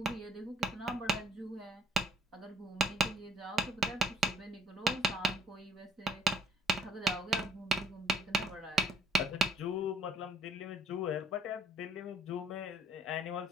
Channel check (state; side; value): normal; both; correlation 0.61